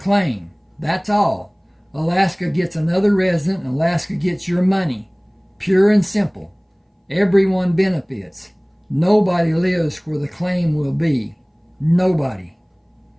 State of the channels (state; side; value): identical; both; correlation 1.00